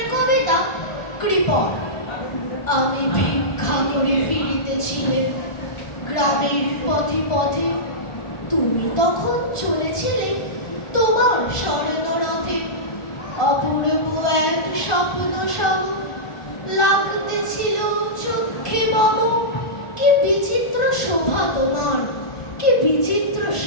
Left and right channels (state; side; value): late; right; 1.4 ms